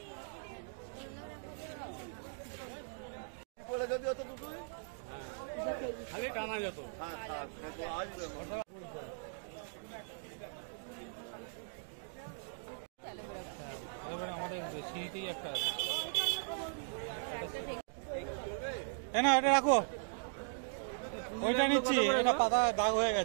বলে যদি অত দুটোই খালি টানা যেত। আসবে আমাদের সিঁড়িতেই একটা আছে। না এটা রাখো, ওইটা নিচ্ছি, এটা পাতায় দাগ হয়ে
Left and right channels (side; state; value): left; silent; digital silence